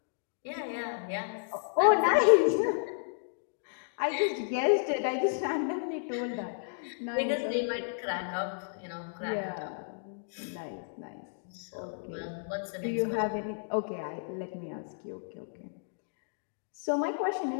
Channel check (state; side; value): silent; right; digital silence